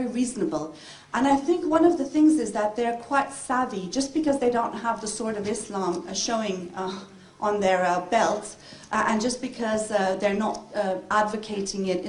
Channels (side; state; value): both; identical; correlation 1.00